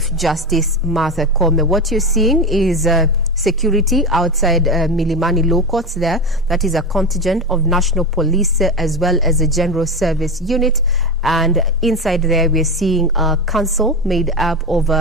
Justice Martha Koome. What you're seeing is security outside Milimani Law Courts there. That is a contingent of National Police as well as a General Service Unit. And inside there, we're seeing a council made up of,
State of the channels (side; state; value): both; normal; correlation 0.19